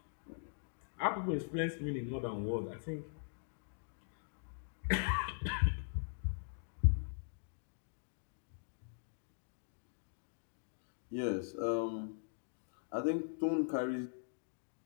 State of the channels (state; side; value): silent; right; digital silence